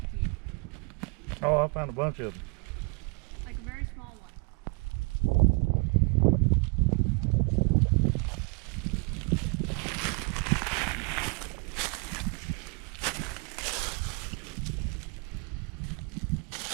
Oh, I found a bunch of them. Like a very small one.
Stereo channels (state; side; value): quieter; left; 33.8 dB